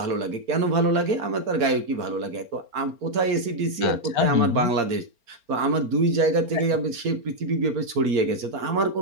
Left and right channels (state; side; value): late; left; 4.4 ms